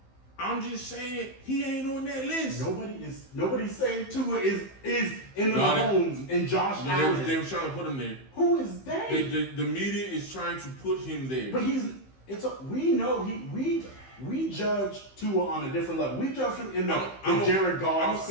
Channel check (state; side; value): late; right; 15 ms